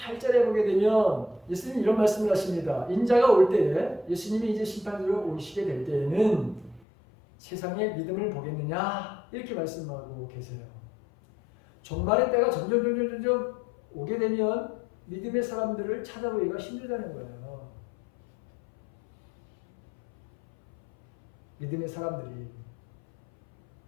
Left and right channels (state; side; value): drops out; right; at 6.9 s